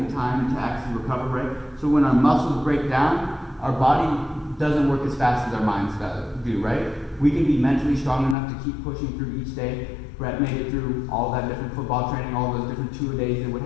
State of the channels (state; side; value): drops out; right; at 8.3 s